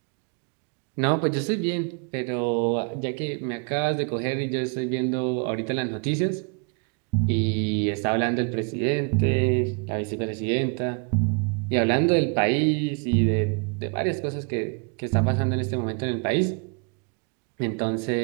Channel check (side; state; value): left; quieter; 36.2 dB